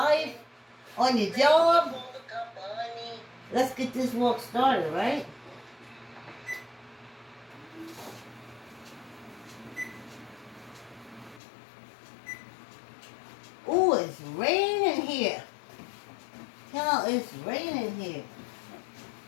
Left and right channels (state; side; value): drops out; right; at 11.4 s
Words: on your job. Let's get this walk started, right? Ooh, it's raining here. Tell, it's raining here.